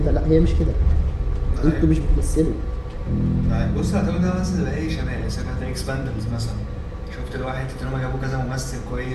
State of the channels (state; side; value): identical; both; correlation 1.00